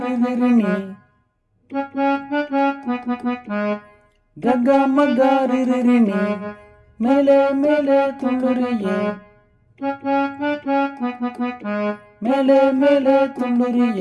ரிரினி ககா மகா ரிரினி மேலே மேலே துள்ளுறியே மேலே மேலே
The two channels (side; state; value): both; identical; correlation 1.00